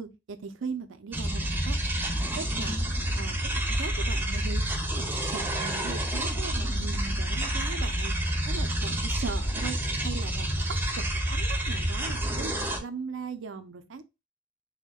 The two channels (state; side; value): normal; both; correlation 0.61